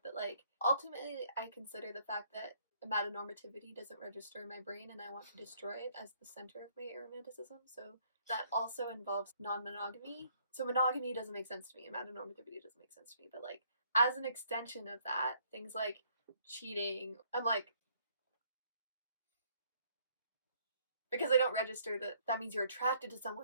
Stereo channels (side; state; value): both; inverted; correlation -0.65